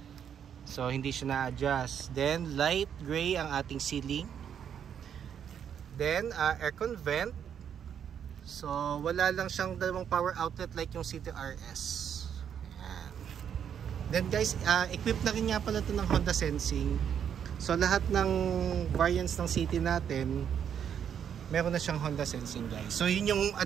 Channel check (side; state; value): left; quieter; 8.5 dB